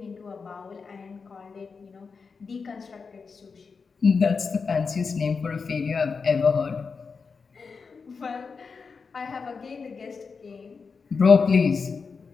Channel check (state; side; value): quieter; right; 5.1 dB